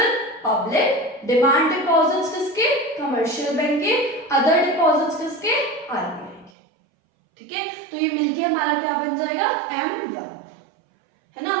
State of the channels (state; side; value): drops out; left; at 6.5 s